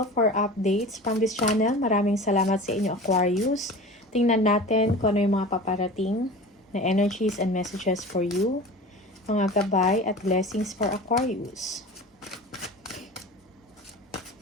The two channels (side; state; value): both; normal; correlation 0.36